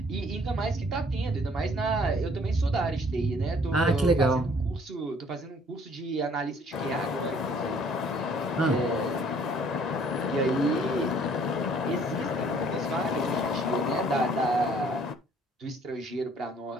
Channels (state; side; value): normal; both; correlation 0.59